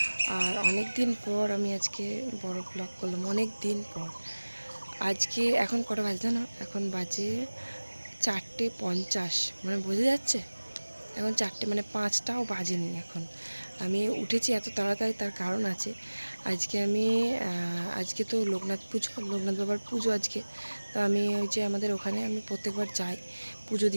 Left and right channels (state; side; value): inverted; both; correlation -1.00